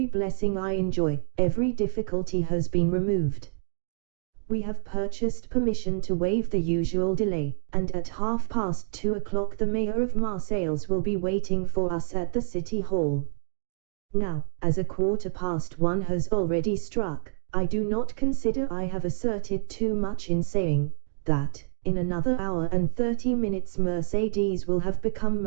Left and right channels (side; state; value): left; silent; 60 dB below the other